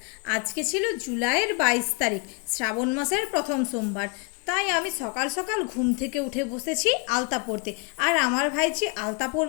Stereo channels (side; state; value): right; quieter; 30.6 dB